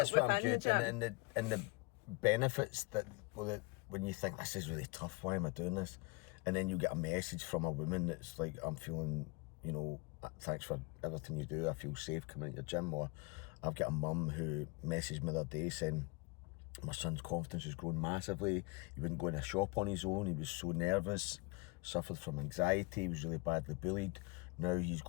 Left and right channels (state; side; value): quieter; right; 26.5 dB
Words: what I'm within good. the gym. And the benefits that when you think this is really tough, why am I doing this? And then you get a message from a woman that's like, I'm feeling, thanks for everything you do. I feel safe coming into your gym. Or I've got a mum who messaged me the other day saying my son's confidence has grown massively. He wouldn't go in a shop on his own. He was so nervous, suffered from anxiety. He was really badly bullied. Now he's